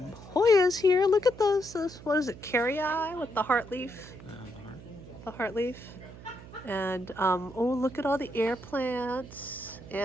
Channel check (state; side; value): noise; right; hum, 17 dB below the sound